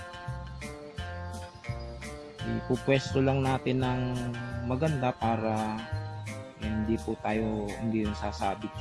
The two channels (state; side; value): identical; both; correlation 1.00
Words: Ipupwesto lang natin ng maganda para hindi yung sasabit